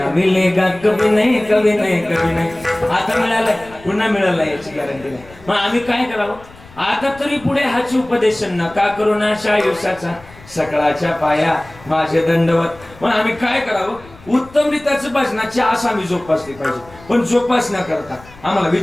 मिलेगा कभी नाही कभी नाही कभी नाही. आता मिळालंय पुन्हा मिळालं याची गॅरंटी नाही. मग आम्ही काय करावं आता तरी पुढे हाची उपदेश नका करू नाशा आयुष्याचा सकळाच्या पाया माझे दंडवत. मग आम्ही काय करावं उत्तम रीताचं भजनाची आस आम्ही जोपासली पाहिजे. पण जोपासना करता आम्हाला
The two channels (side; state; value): left; noise; rumble, 22 dB below the sound